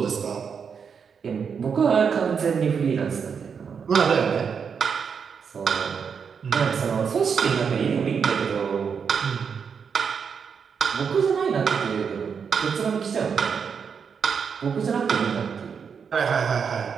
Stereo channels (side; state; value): left; quieter; 6.5 dB